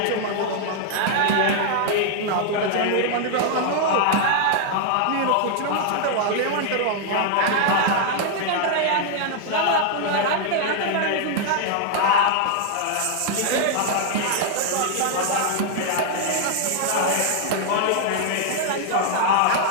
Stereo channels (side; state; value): both; different; correlation 0.00